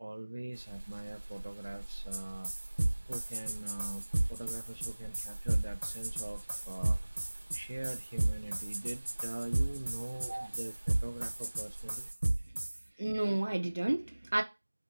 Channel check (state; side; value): inverted; both; correlation -1.00